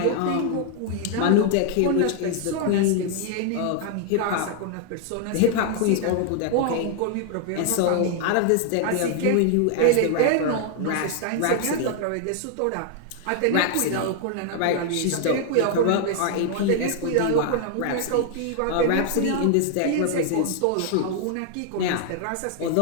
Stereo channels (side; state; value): both; different; correlation 0.00